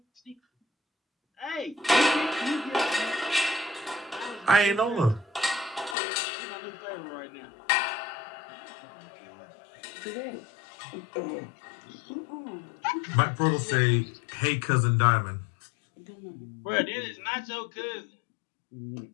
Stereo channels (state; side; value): drops out; right; at 6.0 s